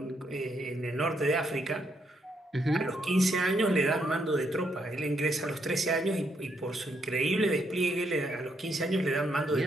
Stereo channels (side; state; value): both; normal; correlation 0.76